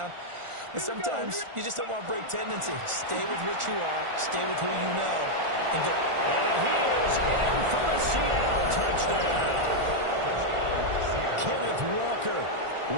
But sometimes you just don't want to break tendency. Stay with what you are, stay with who you know, and go. And he is in for the Seattle touchdown. Kenneth Walker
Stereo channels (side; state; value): left; late; 1.4 ms